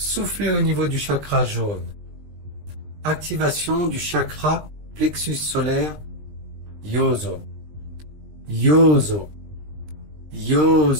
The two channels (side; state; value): left; late; 20 ms